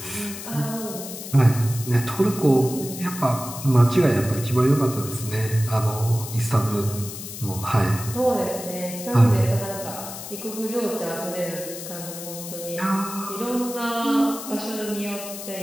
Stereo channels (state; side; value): noise; left; hiss, 10 dB below the sound